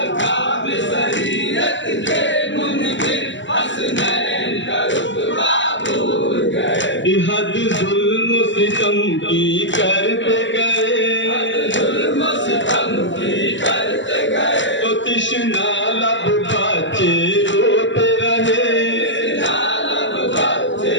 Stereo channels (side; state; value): right; late; 0.54 ms